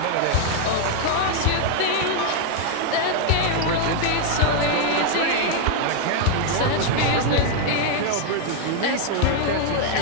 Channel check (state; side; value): different; both; correlation 0.00